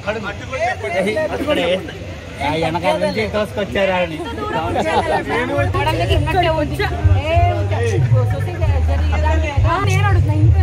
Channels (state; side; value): identical; both; correlation 1.00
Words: వెనకాల నుంచి తోసుకొచ్చారు అని. నేను అడుగుతున్నా,